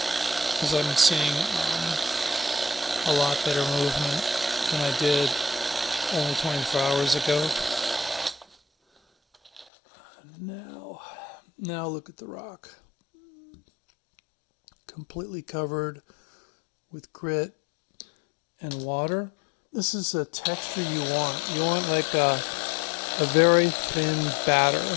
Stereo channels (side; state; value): right; drops out; at 9.7 s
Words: because I'm seeing a lot better movement than I did only 24 hours ago. Now look at the rock. Completely covered with grit and water. This is a texture you want. You want like a very thin batter.